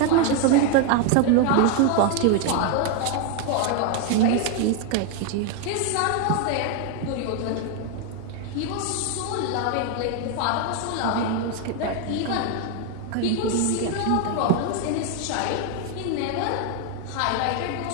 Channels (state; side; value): different; both; correlation 0.01